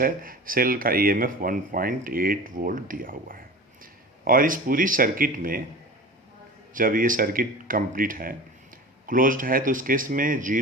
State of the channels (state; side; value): normal; both; correlation 0.36